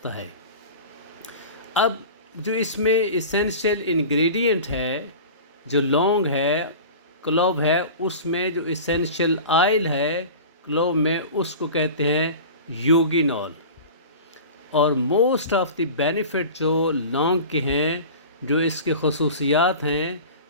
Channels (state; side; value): inverted; both; correlation -0.36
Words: है। अब जो इसमें इसेंशियल इंग्रेडिएंट है, जो लौंग है, क्लोव है, उसमें जो इसेंशियल ऑयल है क्लोव में उसको कहते हैं यूगिनॉल। और मोस्ट ऑफ़ द बेनिफिट जो लौंग के हैं, जो इसके खसूसियात हैं,